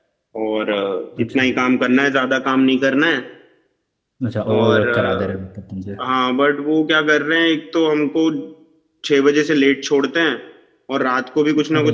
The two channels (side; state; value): both; identical; correlation 1.00